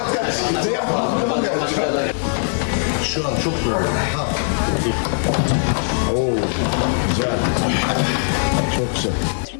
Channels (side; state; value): right; silent; 66 dB below the other